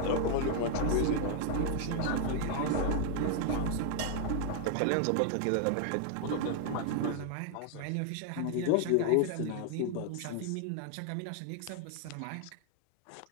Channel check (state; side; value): different; both; correlation 0.00